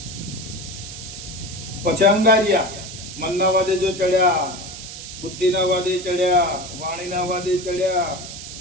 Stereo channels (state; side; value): noise; right; hiss, 11 dB below the sound